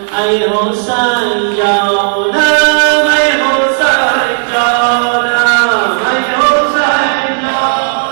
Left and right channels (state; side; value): silent; left; digital silence